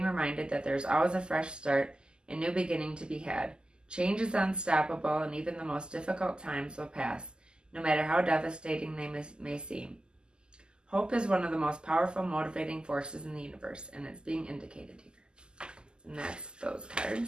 reminded that there is always a fresh start and new beginning to be had. Change is unstoppable, and even the most difficult times will pass, no matter how devastating they may seem. Hope is one of the most powerful motivating forces in the universe, and it's being indicated here. And that's those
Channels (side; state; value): left; late; 0.047 ms